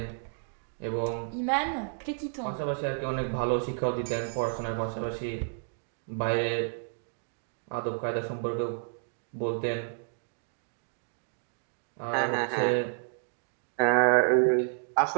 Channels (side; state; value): left; silent; digital silence